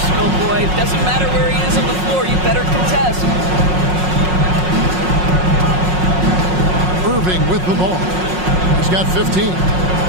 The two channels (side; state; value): left; late; 5.5 ms